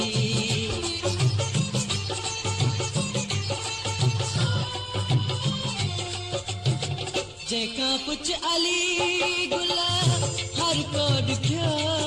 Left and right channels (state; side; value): identical; both; correlation 1.00